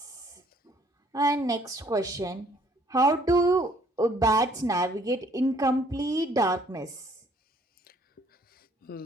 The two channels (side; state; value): both; normal; correlation 0.61